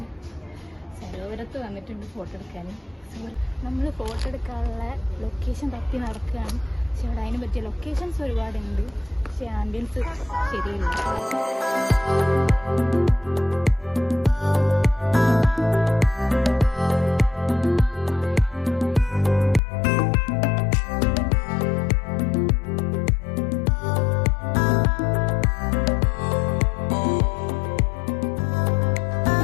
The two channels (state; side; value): drops out; right; at 19.6 s